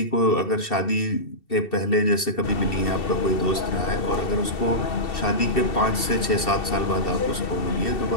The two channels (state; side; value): late; right; 2.7 ms